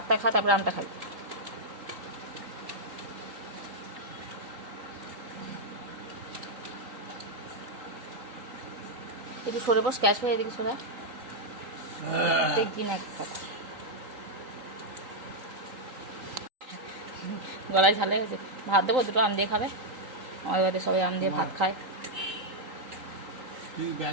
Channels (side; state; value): left; late; 3.8 ms